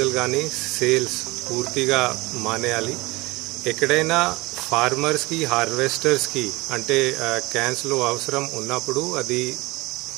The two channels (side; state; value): left; quieter; 22.4 dB